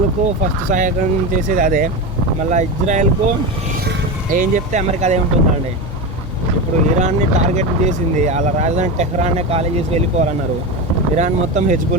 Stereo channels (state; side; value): normal; both; correlation 0.20